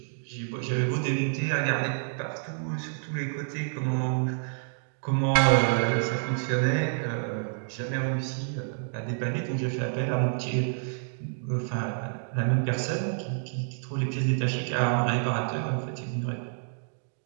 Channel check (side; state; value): left; silent; digital silence